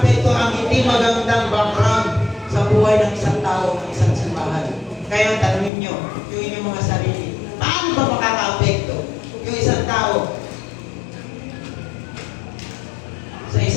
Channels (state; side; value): drops out; right; at 5.7 s